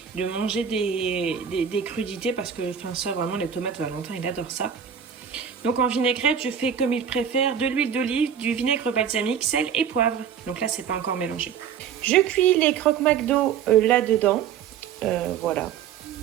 de manger des crudités parce que ça vraiment les tomates Valentin il adore ça. Donc en vinaigrette je fais comme il préfère de l'huile d'olive, du vinaigre balsamique, sel et poivre. Donc là c'est pas encore mélangé. Je cuis les croque McDo là-dedans. Voilà.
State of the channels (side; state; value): left; quieter; 8.0 dB